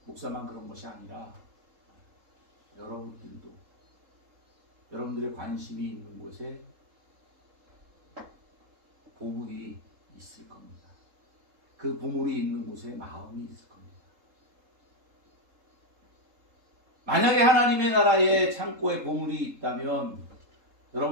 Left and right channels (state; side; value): late; left; 3.7 ms